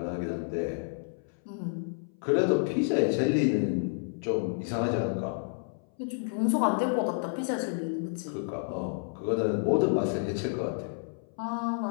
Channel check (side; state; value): right; silent; 58 dB below the other